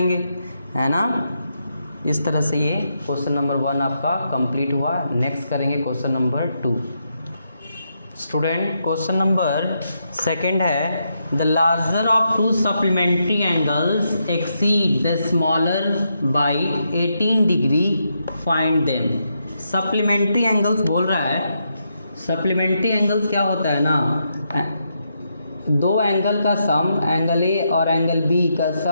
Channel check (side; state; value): both; inverted; correlation -0.81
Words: है ना। इस तरह से ये क्वेश्चन नंबर 1 आपका कंप्लीट हुआ। नेक्स्ट करेंगे question number 2। Student, question number 2 है, the larger of 2 supplementary angles exceed the smaller by 18 degree, find them. Supplementary angles बोल रहा है। सप्लीमेंट्री एंगल्स क्या होता है ना, दो एंगल का सम, एंगल ए और एंगल बी का